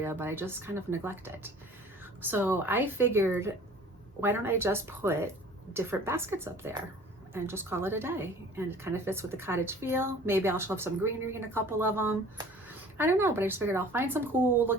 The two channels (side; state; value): both; normal; correlation 0.47